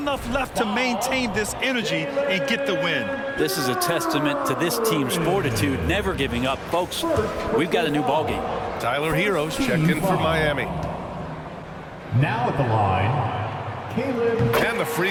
left to maintain this energy and get the win? This is a testament to this team's fortitude, never giving up. Folks, we've got a new ball game. Tyler Heroes checked in for Miami. Now at the line, Caleb. And the free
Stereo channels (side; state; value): both; identical; correlation 1.00